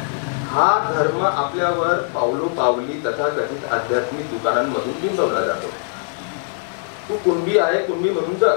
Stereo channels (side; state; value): right; silent; 63 dB below the other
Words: हा धर्म आपल्यावर पावलो पावली तथाकथित आध्यात्मिक दुकानांमधून बिंबवला जातो. तू कुणबी आहे, कुणबी म्हणून